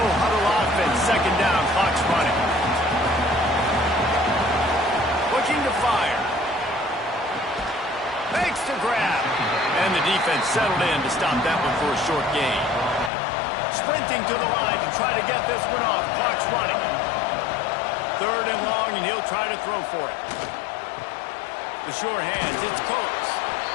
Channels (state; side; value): drops out; right; at 13.1 s